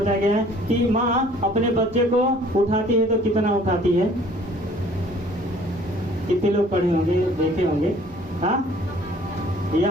गया है कि माँ अपने बच्चे को उठाती है तो कितना उठाती है, कितने लोग पढ़े होंगे, देखे होंगे। हाँ,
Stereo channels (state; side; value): normal; both; correlation 0.55